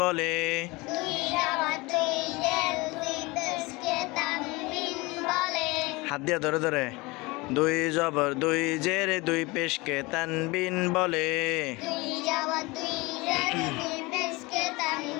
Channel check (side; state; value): right; quieter; 23.8 dB